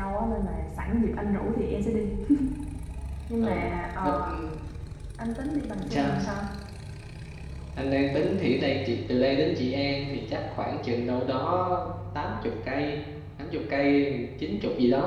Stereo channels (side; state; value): both; identical; correlation 1.00